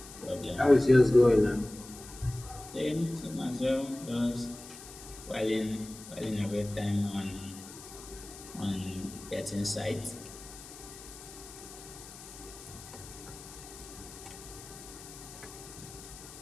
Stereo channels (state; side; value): noise; left; hiss, 15 dB below the sound